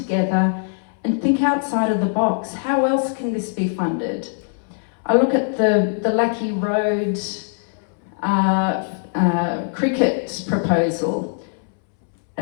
and think outside of the box. How else can this be funded? I look at the Lackey Road cricket proposal.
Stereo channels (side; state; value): right; silent; 65 dB below the other